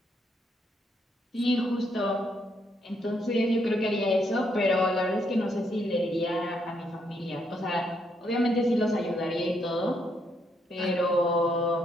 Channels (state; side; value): normal; both; correlation 0.75